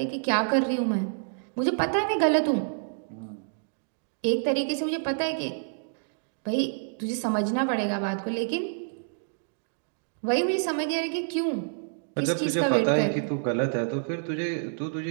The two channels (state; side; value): silent; left; digital silence